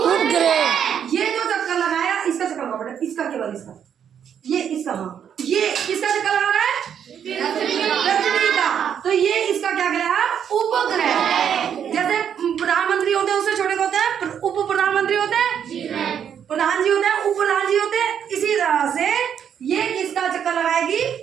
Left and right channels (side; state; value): left; quieter; 8.5 dB